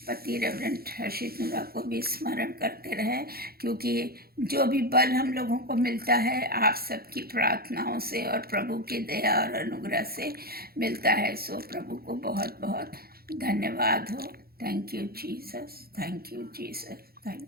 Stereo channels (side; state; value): left; late; 0.44 ms